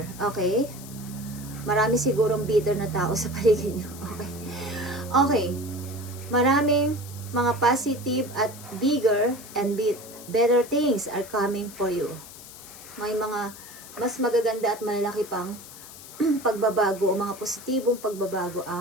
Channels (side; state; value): left; noise; hiss, 16 dB below the sound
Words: Okay? Marami sigurong bitter na tao sa paligid nyo. Okay. Okay. Maraming mga positive at bigger and better things are coming for you. May mga mas magaganda at malalaki pang pagbabago o mga positibong pagbabago